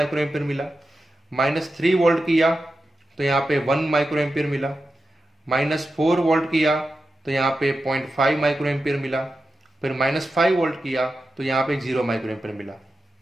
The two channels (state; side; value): normal; both; correlation 0.91